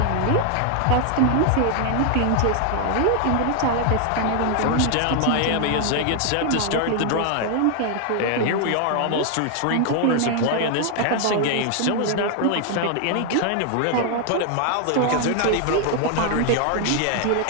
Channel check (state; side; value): different; both; correlation 0.00